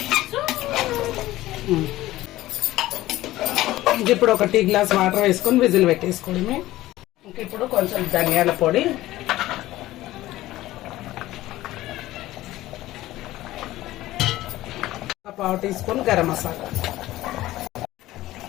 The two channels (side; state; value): right; quieter; 16.2 dB